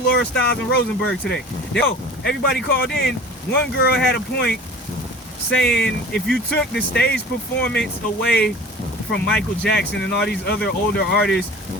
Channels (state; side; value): normal; both; correlation 0.41